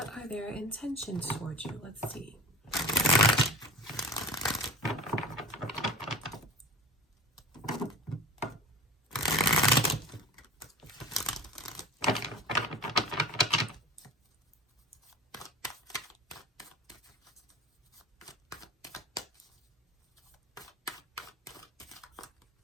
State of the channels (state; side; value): normal; both; correlation 0.35